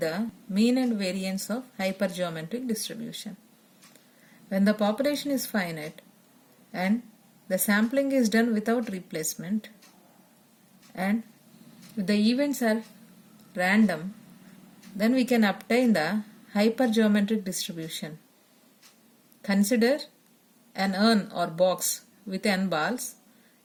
the mean and variance of hypergeometric distribution. When the population is finite and the sampling is done without replacement and if the events are random, then we can obtain the hypergeometric distribution. Consider an urn or box with n balls,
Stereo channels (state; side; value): identical; both; correlation 1.00